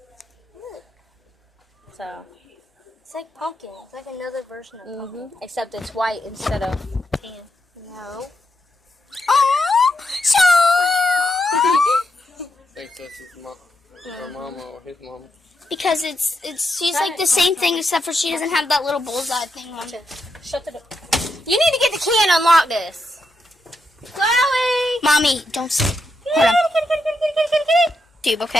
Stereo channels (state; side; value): normal; both; correlation 0.83